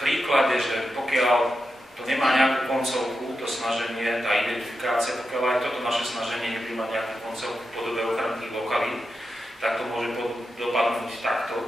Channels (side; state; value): both; normal; correlation 0.88